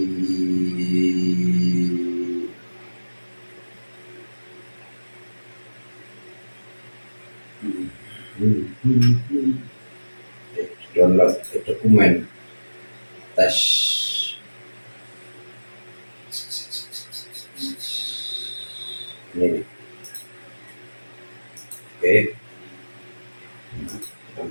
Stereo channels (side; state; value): both; inverted; correlation -1.00